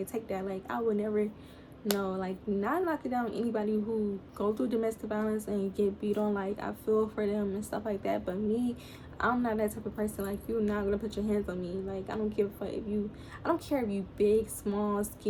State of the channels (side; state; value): both; identical; correlation 1.00